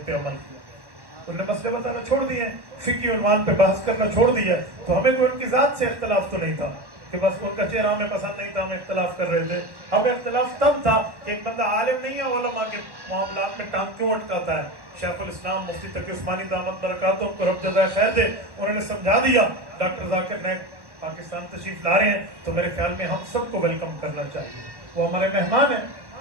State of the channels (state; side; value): late; left; 1.1 ms